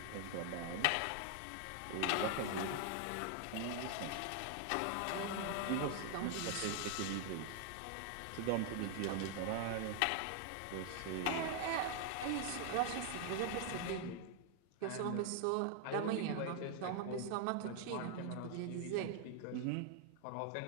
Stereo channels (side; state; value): both; different; correlation 0.00